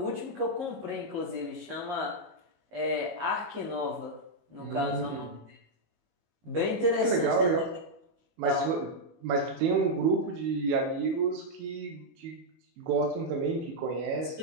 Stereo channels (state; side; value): late; left; 19 ms